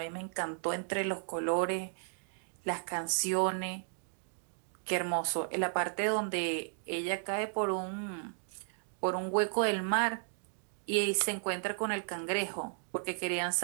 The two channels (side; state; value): left; silent; digital silence